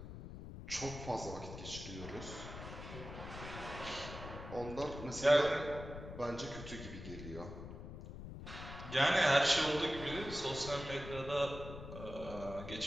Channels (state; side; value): noise; left; rumble, 10 dB below the sound